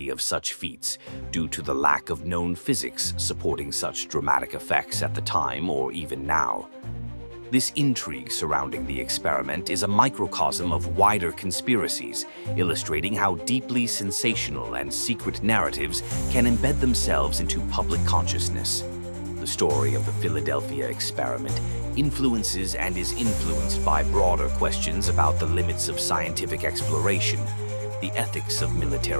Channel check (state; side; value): inverted; both; correlation -1.00